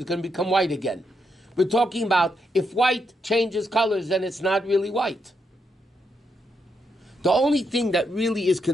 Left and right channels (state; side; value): normal; both; correlation 0.81